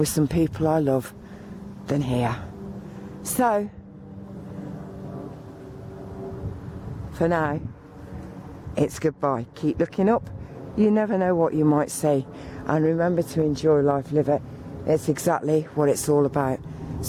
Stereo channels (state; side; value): identical; both; correlation 1.00